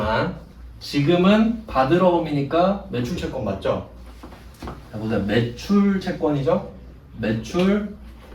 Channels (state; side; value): identical; both; correlation 1.00